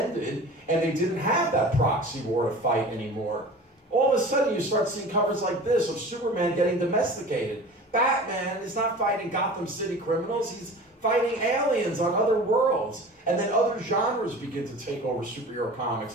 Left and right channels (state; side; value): normal; both; correlation 0.38